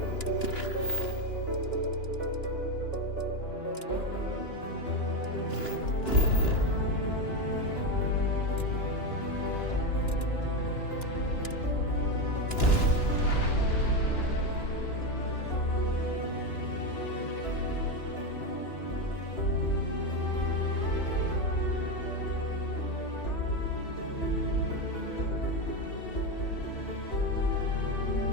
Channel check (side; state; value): right; late; 2.9 ms